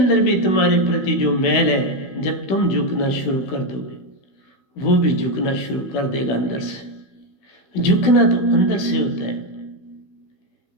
भी तुम्हारे प्रति जो मैल है, जब तुम झुकना शुरू कर दोगे, वो भी झुकना शुरू कर देगा अंदर से। झुकना तो अंदर से होता है।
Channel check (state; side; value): late; right; 16 ms